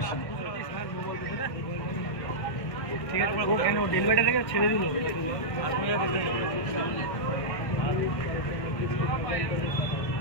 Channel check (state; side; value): late; right; 1.6 ms